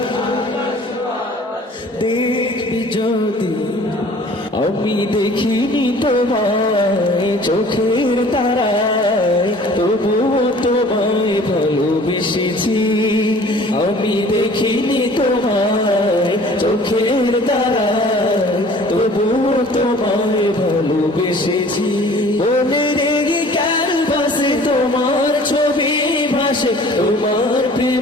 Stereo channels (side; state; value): both; normal; correlation 0.50